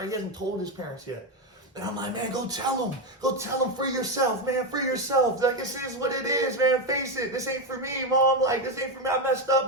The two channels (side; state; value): both; normal; correlation 0.09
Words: He hasn't told his parents yet. And I'm like, man, go tell them. Go tell them for yourself, man, for yourself. Like, this is what it is, man. Face it. This ain't for me, Mom. Like, this ain't for me. I messed up,